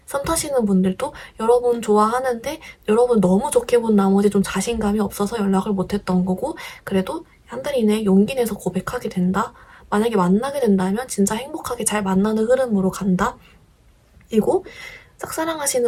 썸 타시는 분들도 여러분 좋아하는데 여러분 너무 좋게 본 나머지 좀 자신감이 없어서 연락을 못했던 거고 그래도 한 달 이내에 용기 내서 고백하게 된다. 만약에 만나게 된다면 진짜 행복하게 잘 만나는 흐름으로 간다. 그리고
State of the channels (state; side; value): identical; both; correlation 1.00